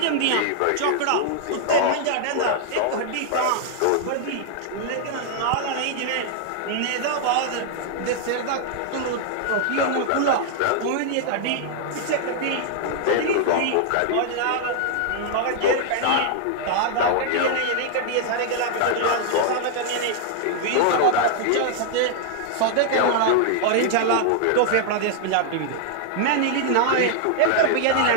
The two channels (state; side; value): different; both; correlation -0.01